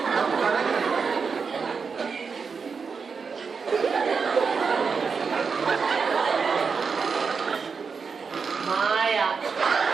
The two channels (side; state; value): left; quieter; 5.4 dB